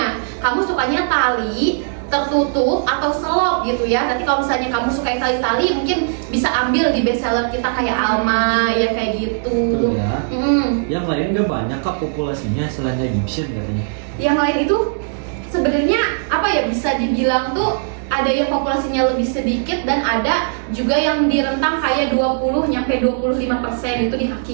Kamu sukanya tali, tertutup atau selop gitu ya. Nanti kalau misalnya kamu suka yang tali-tali mungkin bisa ambil di bestseller kita kayak Alma ya kayak gitu. Betul ya. Mm. Yang lain gak banyak kak populasinya selain Egyptian katanya. Yang lain itu sebenarnya apa ya, bisa dibilang tuh ada yang populasinya lebih sedikit dan ada juga yang di rentang kayak 20 nyampe 25% itu di kaki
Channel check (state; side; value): silent; left; digital silence